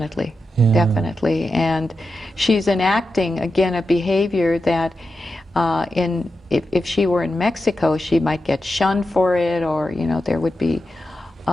Yeah. Definitely. And she's enacting, again, a behavior that if she were in Mexico, she might get shunned for it, or, you know, there would be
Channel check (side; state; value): both; normal; correlation 0.90